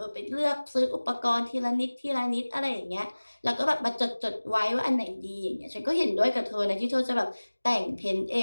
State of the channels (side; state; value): both; inverted; correlation -1.00